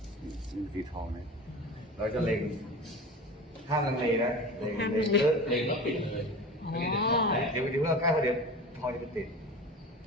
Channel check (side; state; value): both; normal; correlation 0.34